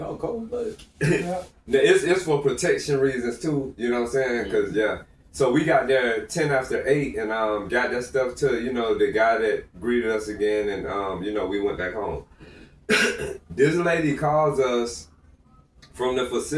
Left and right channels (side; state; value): both; identical; correlation 1.00